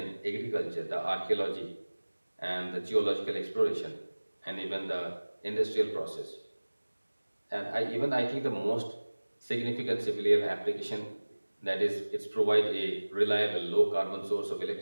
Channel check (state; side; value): inverted; both; correlation -1.00